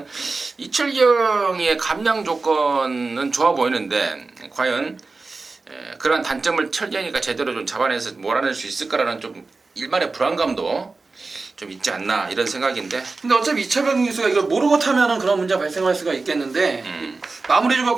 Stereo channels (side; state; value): left; quieter; 3.8 dB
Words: 이철경의 감량 조건은 좋아 보이는데 과연 그런 단점을 철경이가 제대로 좀 잡아내서 몰아낼 수 있을까라는 좀 일말의 불안감도 좀 있지 않나 이런 생각인데. 근데 어차피 이철경 기수가 이걸 모르고 타면은 그런 문제가 발생할 수가 있겠는데 마무리